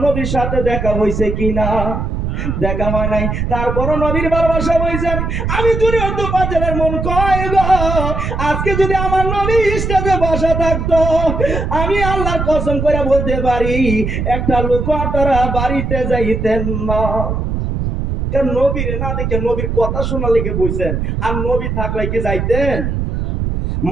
নবীর সাথে দেখা হয়েছে কিনা? দেখা হয় নাই, তারপরও নবীর ভালোবাসা হয়েছেন। আমি জুনিয়র তোফাজ্জলের মন কয় গো, আজকে যদি আমার নবী স্টেজে বসা থাকতো, আমি আল্লাহর কসম করে বলতে পারি একটা লোক আপনারা বাড়িতে যাইতেন না। কারণ নবীরে না দেখে নবীর কথা শোনা লেগে বইছেন, আর নবী থাকলে কি যাইতেন?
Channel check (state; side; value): noise; right; rumble, 2 dB below the sound